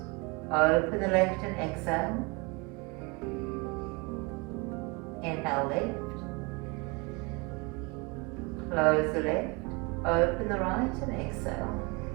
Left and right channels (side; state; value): left; quieter; 27.0 dB